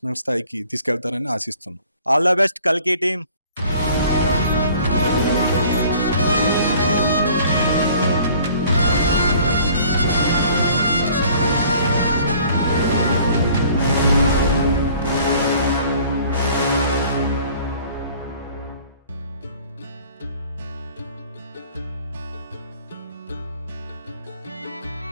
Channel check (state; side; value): inverted; both; correlation -0.53